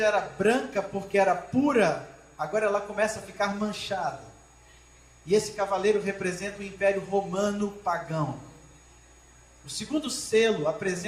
era branca porque era pura, agora ela começa a ficar manchada. E esse cavaleiro representa o Império Romano pagão. O segundo selo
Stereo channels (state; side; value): identical; both; correlation 1.00